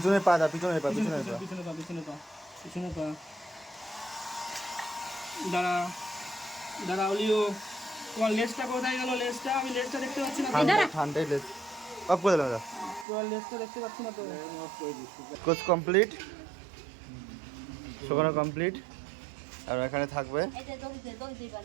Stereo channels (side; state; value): left; drops out; at 13.1 s